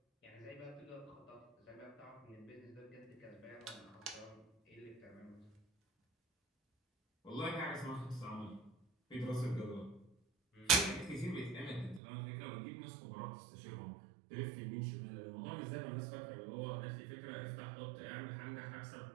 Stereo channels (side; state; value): left; drops out; at 12.0 s